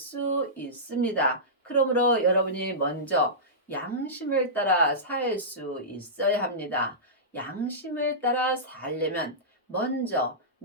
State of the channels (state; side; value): normal; both; correlation -0.17